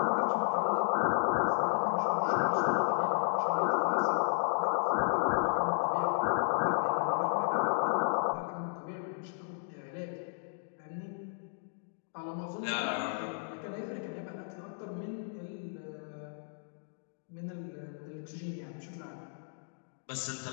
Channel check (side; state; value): right; silent; digital silence